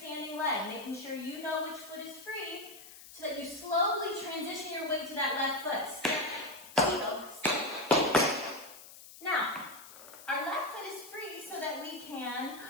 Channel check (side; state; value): left; noise; hiss, 17 dB below the sound